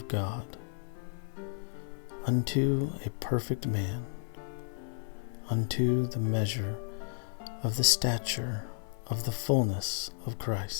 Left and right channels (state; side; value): silent; right; 56 dB below the other